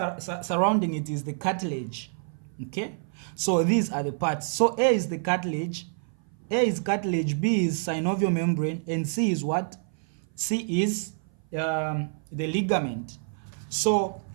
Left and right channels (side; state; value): left; silent; 56 dB below the other